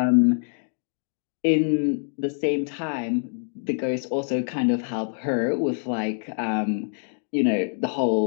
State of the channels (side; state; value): right; silent; digital silence